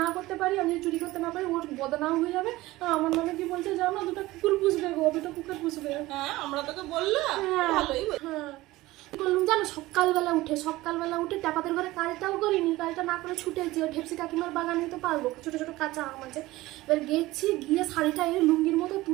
করতে পারি, আমি যদি চুরি করতে না পারি, ওর বদনাম হয়ে যাবে। আমার নামে কি বলছে জানো, দুটো কুকুর পুষবে গো, দুটো কুকুর পুষবে। হ্যাঁ আমরা তোকে বললাম, ভালোই। হ্যাঁ বললাম জানো, সকালবেলা উঠে ট্যাপাদের ঘরে কাজটাও করিনি, কাজটা না করে ছুটেছি। ওই ঢেপসি কাকিমার বাগান নিতে পারবো, ছোট ছোট কাঁচা আম আছে। এবার গেছি, গিয়ে শাড়িটা এনে লুঙ্গির মতো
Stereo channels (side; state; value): left; quieter; 18.4 dB